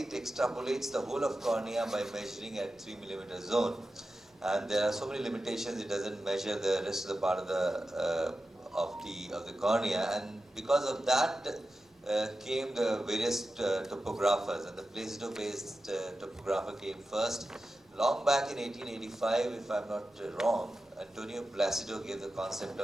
it extrapolates the whole of cornea by measuring at 3 mm zone. And there are so many limitations, it doesn't measure the rest of the part of the cornea, and because of that came the various topographers, and the Placido-based topographer came first. Long back in 1885, if I'm not wrong, Antonio Placido gave the concept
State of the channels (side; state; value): both; normal; correlation 0.92